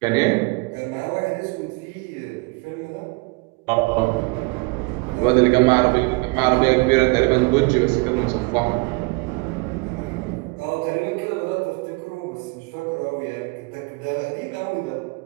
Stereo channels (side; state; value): left; quieter; 27.6 dB